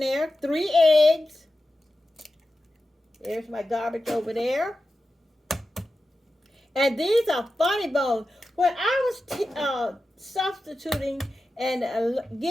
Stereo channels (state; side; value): normal; both; correlation 0.92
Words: 3 eggs. There's my garbage over there. And these are funny bones. When I was substituting and